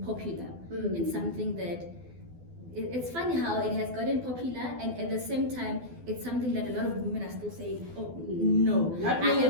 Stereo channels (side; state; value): left; late; 12 ms